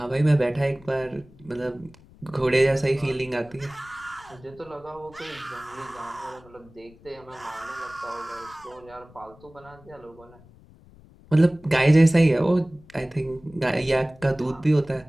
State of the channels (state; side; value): noise; left; rumble, 24 dB below the sound